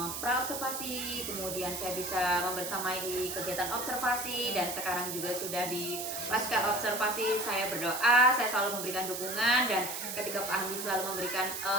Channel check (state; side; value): noise; right; hiss, 5 dB below the sound